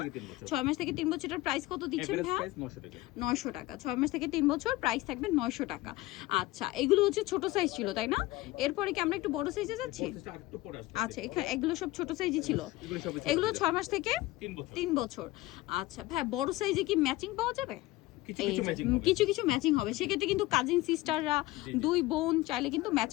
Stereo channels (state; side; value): quieter; right; 18.6 dB